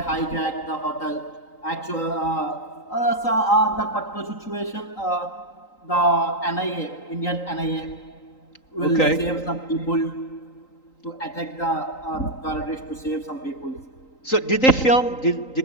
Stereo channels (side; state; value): right; late; 3.9 ms